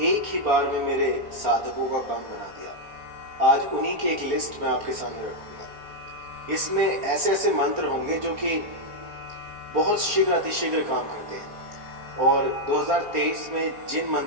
एक ही बार में मेरे साधकों का काम बना दिया। आज उन्हीं की एक लिस्ट मैं आपके सामने रखूंगा। इसमें ऐसे ऐसे मंत्र होंगे जो कि बहुत शीघ्र अतिशीघ्र काम करते हैं, और 2023 में जिन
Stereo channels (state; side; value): late; left; 4.3 ms